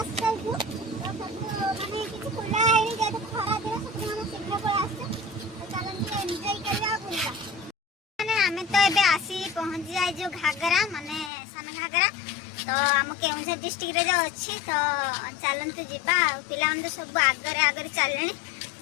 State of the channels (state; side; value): drops out; right; at 11.3 s